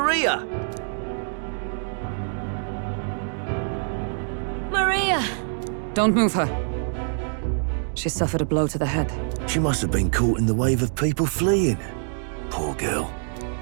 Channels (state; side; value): silent; left; digital silence